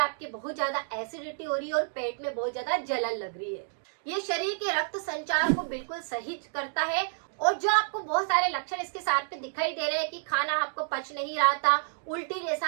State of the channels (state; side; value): silent; left; digital silence